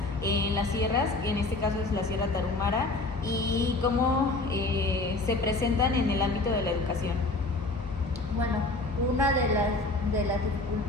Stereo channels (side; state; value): right; quieter; 3.1 dB